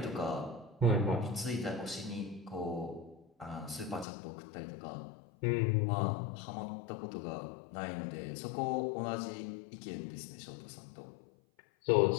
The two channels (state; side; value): drops out; right; at 4.0 s